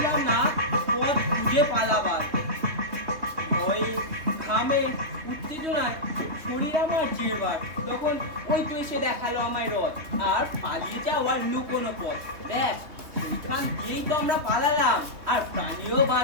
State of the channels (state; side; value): late; left; 3.4 ms